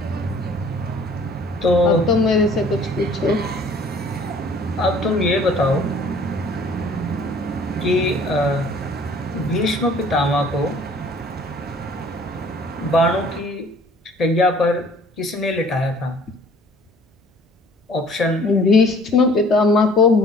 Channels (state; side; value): normal; both; correlation 0.54